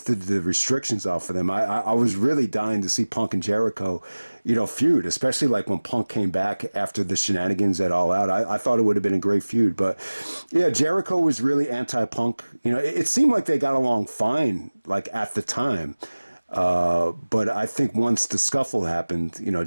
the restrictions off of them. I was really dying to see Punk and Jericho, feud, especially like when Punk came back after the shenanigans at All Out. I thought it would have been a great feud. But yeah, Jericho was really anti-Punk. It seemed like they got along fine, like at the time. But I think once the scuffle happened,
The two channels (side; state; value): both; inverted; correlation -1.00